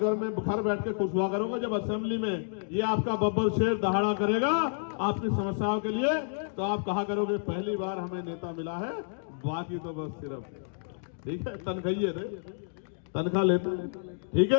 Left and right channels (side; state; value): right; silent; digital silence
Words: में घर बैठ के खुश हुआ करोगे जब असेंबली में ये आपका बब्बर शेर दहाड़ा करेगा आपकी समस्याओं के लिए। तो आप कहा करोगे पहली बार हमें नेता मिला है, बाकी तो बस सिर्फ ठीक है तनख्वाही थे, तनख्वाह लेते हैं, ठीक